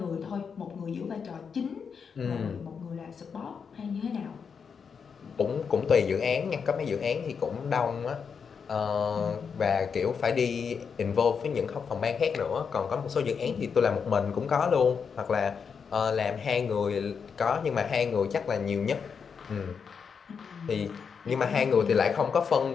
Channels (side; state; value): right; quieter; 6.2 dB